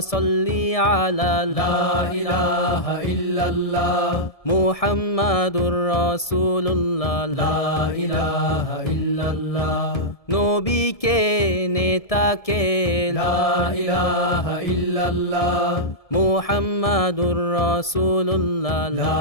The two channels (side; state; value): right; late; 1.7 ms